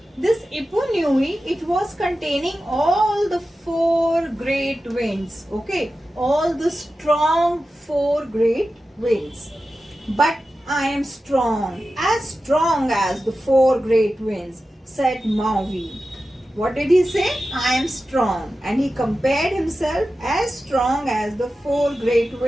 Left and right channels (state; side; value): normal; both; correlation 0.93